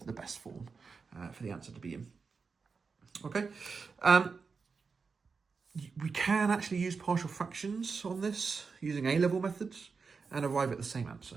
best form for the answer to be in. Okay. We can actually use partial fractions on this using A-level methods and arrive at the same answer.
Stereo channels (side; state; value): left; quieter; 5.0 dB